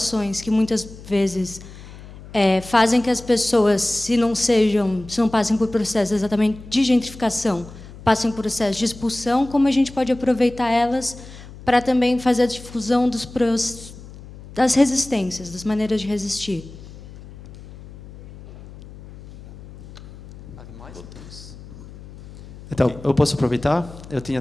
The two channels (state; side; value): noise; left; hum, 17 dB below the sound